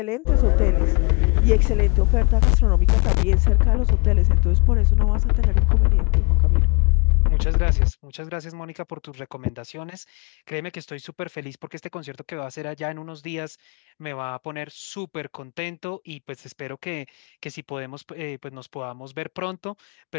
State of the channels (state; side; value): quieter; right; 32.4 dB